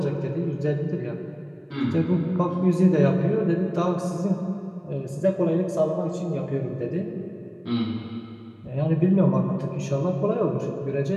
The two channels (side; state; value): both; identical; correlation 1.00